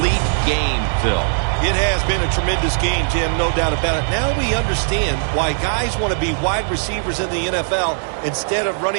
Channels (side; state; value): left; silent; digital silence